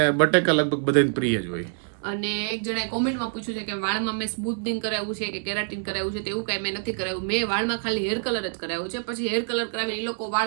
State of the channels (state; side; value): silent; left; digital silence